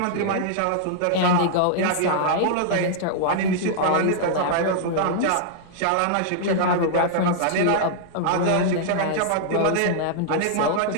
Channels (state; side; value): different; both; correlation -0.01